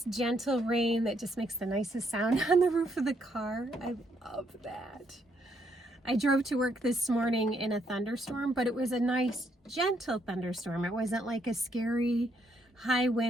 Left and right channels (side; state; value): both; normal; correlation 0.74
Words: gentle rain that just makes the nicest sound on the roof of the car. I love that. I drove to work this morning in a thunderstorm, but it was a nice, gentle thunderstorm. It wasn't like a scary, high